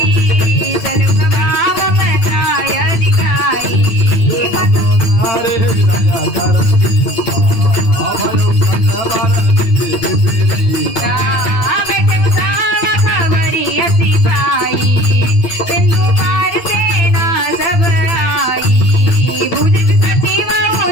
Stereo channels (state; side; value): late; right; 8.9 ms